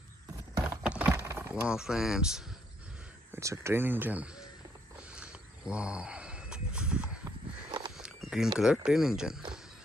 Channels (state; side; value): normal; both; correlation 0.71